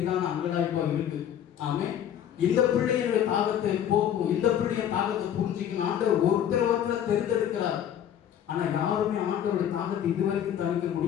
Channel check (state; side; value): quieter; right; 9.9 dB